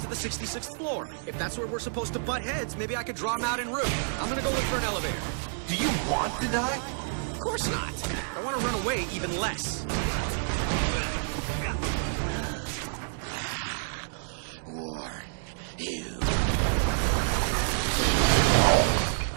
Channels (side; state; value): left; silent; digital silence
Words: the 66th floor. If that's where we're supposed to butt heads, maybe I could draw him out en route. I'm gonna go look for an elevator. Do you want to die? Of course not. I want to run away even less. Warn you.